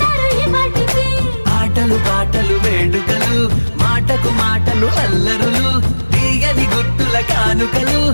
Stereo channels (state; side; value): inverted; both; correlation -1.00